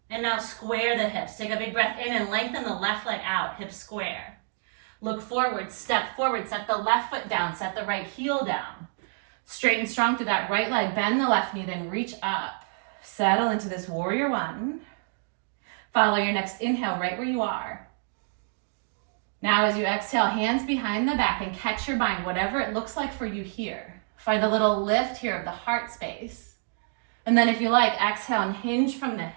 And now square the hips. Take a big breath in and lengthen the left leg out, hips square. Look forward, step forward, set the left foot down, set the right heel down. Straight and strong through that right leg, bend the left knee, then reach up. Settle into this warrior one. Follow your next inhale right where you are. Now as you exhale, hands behind the back and catch your bind, whatever it looks like for you here. Find a little lift here of the heart space. And then if you like, exhale and hinge from the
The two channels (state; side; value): silent; left; digital silence